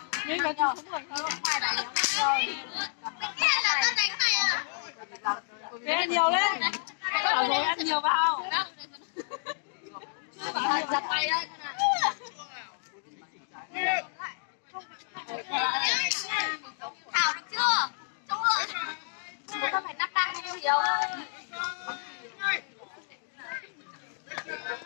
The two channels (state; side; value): silent; right; digital silence